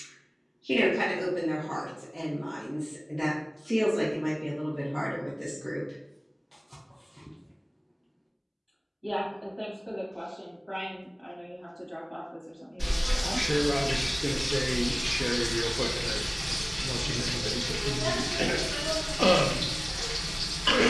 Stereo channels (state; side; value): identical; both; correlation 1.00